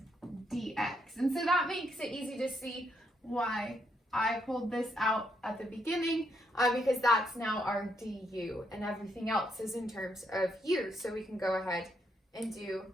dx. And so that makes it easy to see why I pulled this out at the beginning, because that's now our du, and everything else is in terms of u. So we can go ahead and do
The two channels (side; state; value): both; normal; correlation 0.77